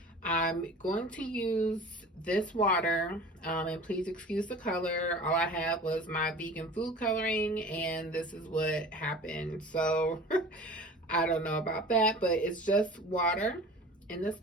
I'm going to use this water, and please excuse the color. All I had was my vegan food coloring, and this is what happened. So I don't know about that, but it's just water in this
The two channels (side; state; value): both; normal; correlation 0.41